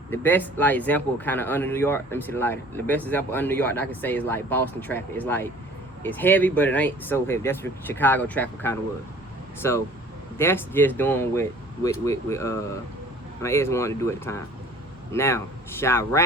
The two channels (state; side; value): normal; both; correlation 0.49